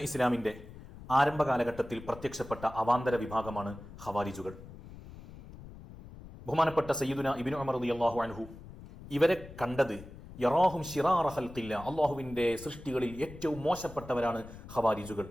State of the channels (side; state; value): left; noise; rumble, 16 dB below the sound